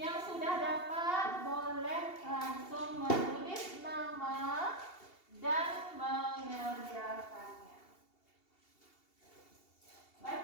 sudah dapat boleh langsung menulis nama dan mengerjakannya.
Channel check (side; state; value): right; late; 2.7 ms